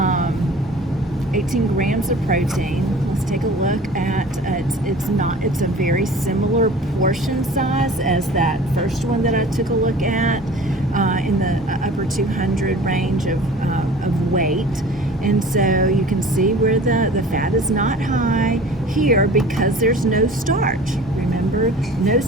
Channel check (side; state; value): both; normal; correlation 0.44